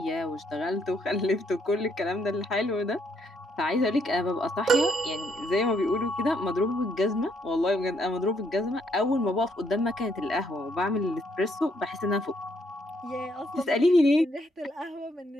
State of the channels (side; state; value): both; normal; correlation 0.72